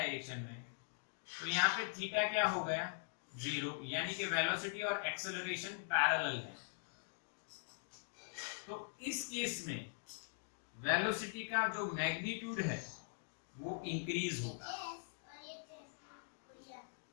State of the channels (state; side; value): silent; right; digital silence